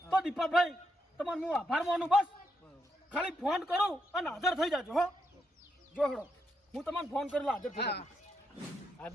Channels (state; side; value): normal; both; correlation 0.80